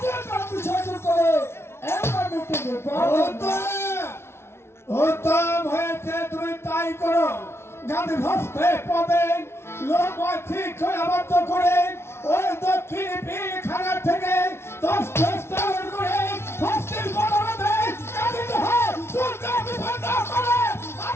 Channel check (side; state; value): right; late; 0.12 ms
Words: কাজ বিসর্জন করে এমন মিটিং উত্তম হয়েছে তুমি তাই করো গান্ধী হস্তে পাবেন লোক ঠিক করে আবদ্ধ করে ওই দক্ষিণ পিলখানা থেকে 10 করে হস্তের বদলে গান্ধী হয় দুর্গা বিপন্ন করে